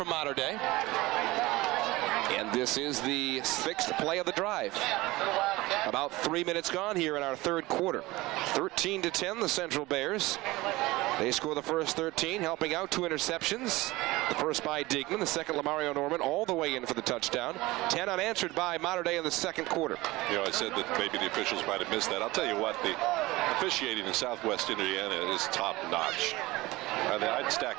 Mater Dei. And this is the 6th play of the drive. About 3 minutes gone here in our 3rd quarter. 13-10, the Central Bears. They score the first 13, helping out 2 interceptions. The first by Diekman, the second Lamario Norman, all the way in for the touchdown. 10 unanswered by Mater Dei in the 2nd quarter. You know, I said that maybe the officials might have missed that. I'll tell you what, the officiating in Southwest Indiana is top-notch. I'd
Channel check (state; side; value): quieter; left; 20.1 dB